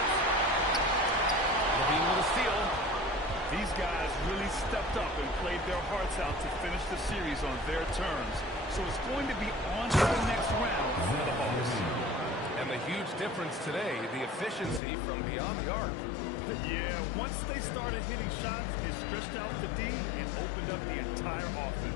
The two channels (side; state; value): right; drops out; at 14.8 s